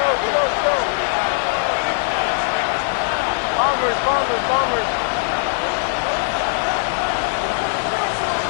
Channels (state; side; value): silent; right; digital silence